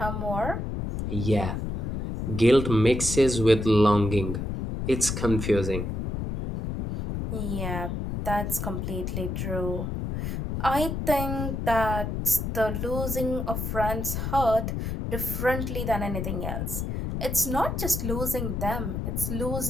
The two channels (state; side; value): noise; left; rumble, 3 dB below the sound